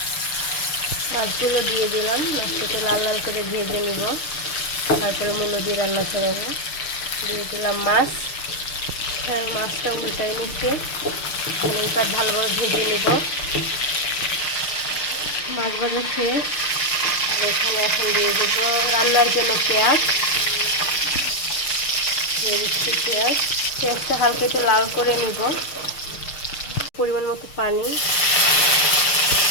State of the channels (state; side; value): late; right; 6.6 ms